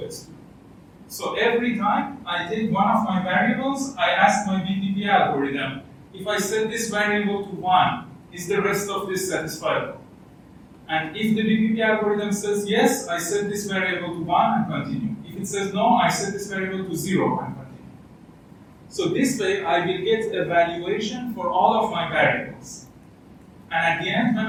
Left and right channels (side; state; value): both; identical; correlation 1.00